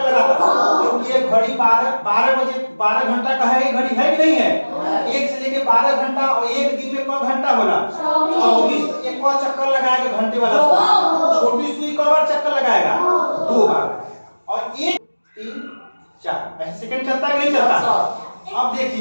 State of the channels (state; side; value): inverted; both; correlation -1.00